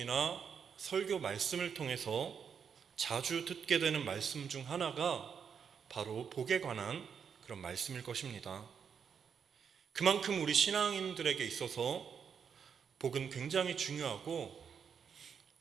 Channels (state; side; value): quieter; left; 7.0 dB